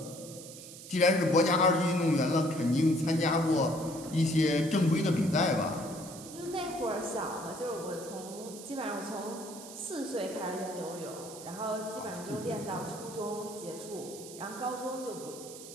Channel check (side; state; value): right; noise; hiss, 14 dB below the sound